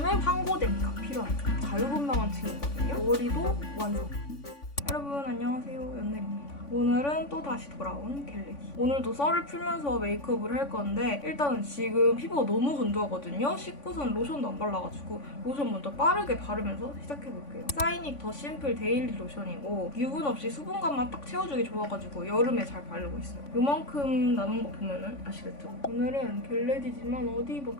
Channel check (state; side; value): late; right; 3.5 ms